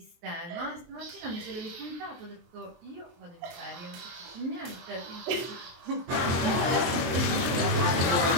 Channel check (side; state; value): left; late; 23 ms